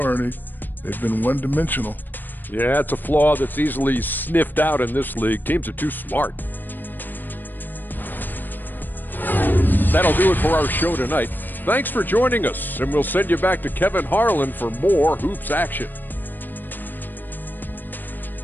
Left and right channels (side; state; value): right; late; 0.091 ms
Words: They've been one-dimensional. Yeah, it's a flaw that's easily sniffed out in this league. Teams are too smart. That'll do it for our show tonight. Thanks for joining us, and we'll send you back to Kevin Harlan for more hoops action.